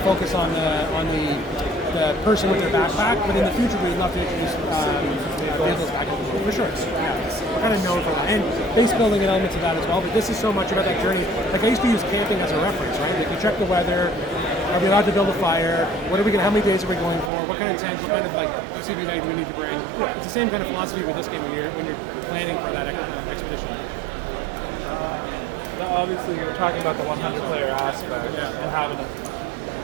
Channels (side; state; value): left; drops out; at 17.3 s